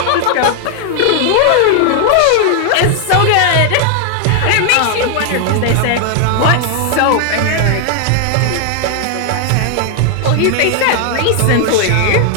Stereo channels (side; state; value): both; different; correlation 0.00